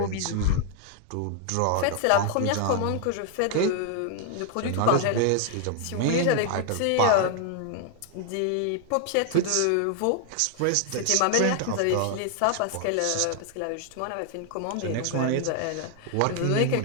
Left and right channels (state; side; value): different; both; correlation 0.00